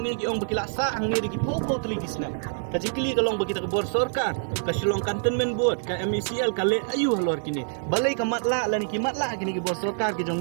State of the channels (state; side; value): silent; left; digital silence